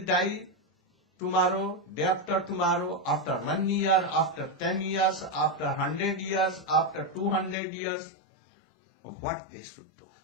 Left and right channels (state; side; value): drops out; right; at 7.6 s